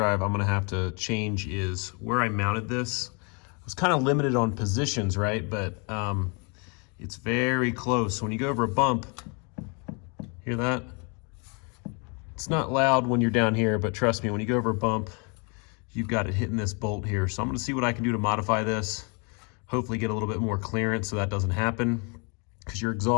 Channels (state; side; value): quieter; right; 34.4 dB